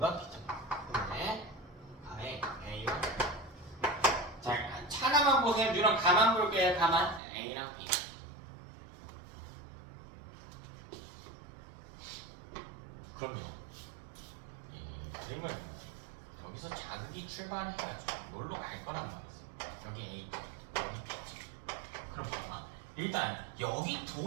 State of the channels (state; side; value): drops out; left; at 7.2 s